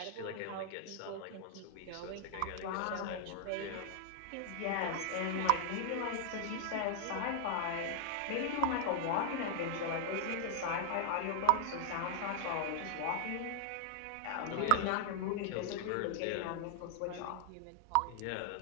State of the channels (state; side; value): different; both; correlation 0.00